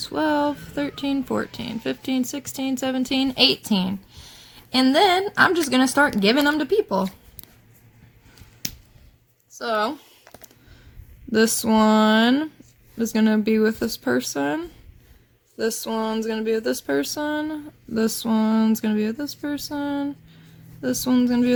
13, 14, 15, 16, 17, 18. And then I'm just going to start giving them to people. So this one is going to be with this person. This one's going to be with this person. This one's going to be with this person. This one's going to be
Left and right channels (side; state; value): both; identical; correlation 1.00